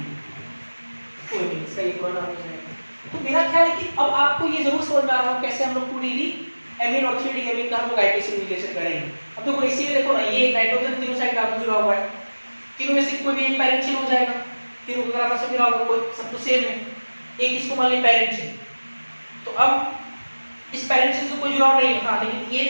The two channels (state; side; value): inverted; both; correlation -1.00